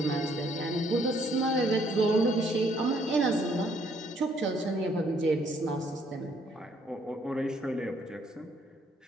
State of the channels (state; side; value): normal; both; correlation 0.66